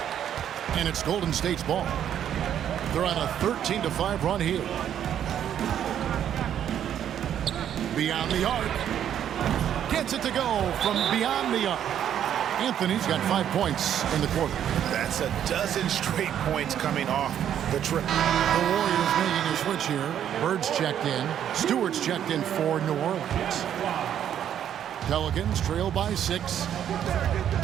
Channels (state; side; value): quieter; left; 9.9 dB